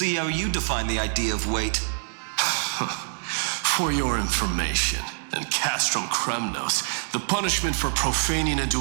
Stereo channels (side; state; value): left; silent; 61 dB below the other